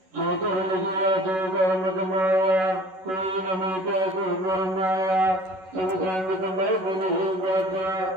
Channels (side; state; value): left; late; 11 ms